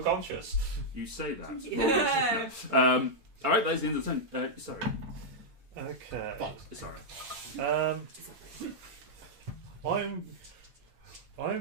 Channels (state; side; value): late; left; 8.8 ms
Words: You say that. Yeah. Alright, that is the end of the turn. Sorry. Okay. Sorry. I'm